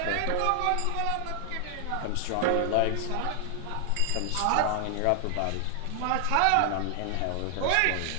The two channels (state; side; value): different; both; correlation 0.00